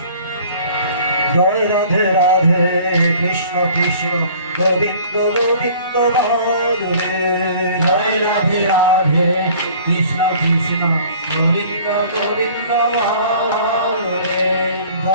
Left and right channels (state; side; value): inverted; both; correlation -0.50